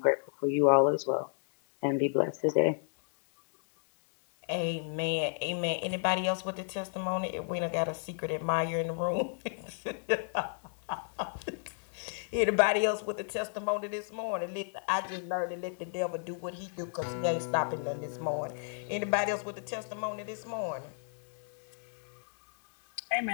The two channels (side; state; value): right; silent; digital silence